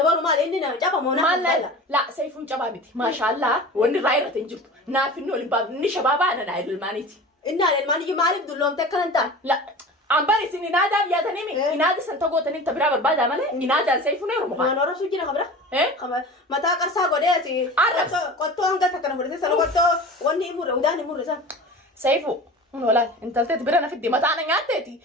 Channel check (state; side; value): normal; both; correlation 0.36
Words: mal ini na japa mona mal la saya pun coba biti mashallah wani raira tinjuk na finno limbab ni shababa na idul maniti inna al mani malib dulom te kalanta la ambari sini nada ya tanimi inada santago tanim tabira barbada male inada saya pun ero ma nora sujina khabra khabra mata karsa gode ati arab qotto anga takana furde salo qotto wani imure udani imure sa saifu wala intaltet birana fiddi mata ana ngateti